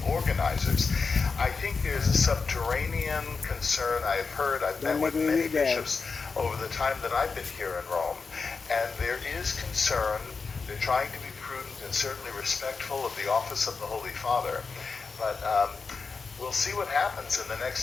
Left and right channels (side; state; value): right; quieter; 4.8 dB